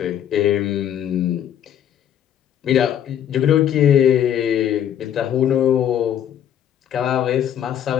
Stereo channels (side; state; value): right; quieter; 10.0 dB